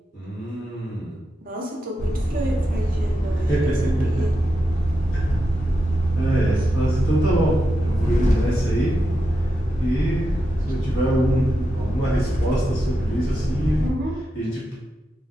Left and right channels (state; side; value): normal; both; correlation 0.88